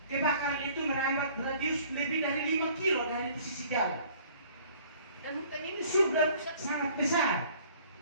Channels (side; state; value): both; inverted; correlation -0.54